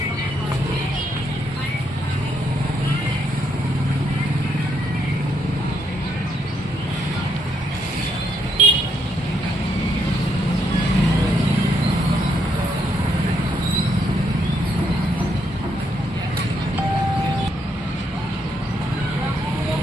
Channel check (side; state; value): both; normal; correlation 0.75